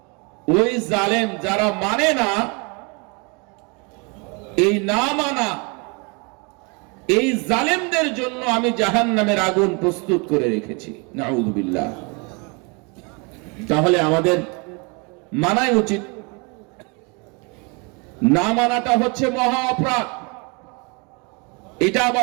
ওই জালেম যারা মানে না, এই না মানা এই জালেমদের জন্য আমি জাহান্নামের আগুন প্রস্তুত করে রেখেছি। নাউযুবিল্লাহ। তাহলে আমাদের মানাই উচিত। না মানাটা হচ্ছে মহা অপরাধ। এটা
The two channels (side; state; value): left; quieter; 31.5 dB